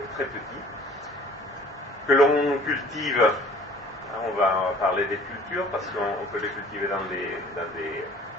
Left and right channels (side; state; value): both; normal; correlation 0.51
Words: très petit, que l'on cultive. On va parler des cultures, parce qu'on peut les cultiver dans des